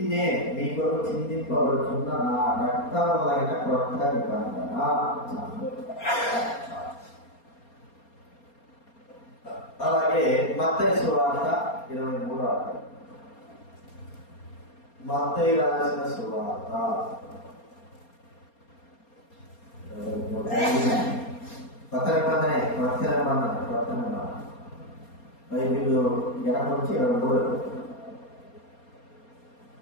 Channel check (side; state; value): right; late; 4.3 ms